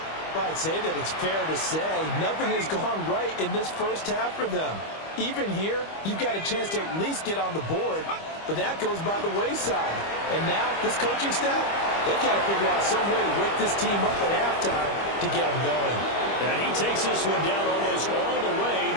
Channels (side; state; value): right; late; 25 ms